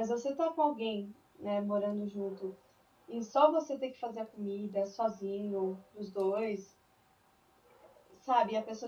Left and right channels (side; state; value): both; identical; correlation 1.00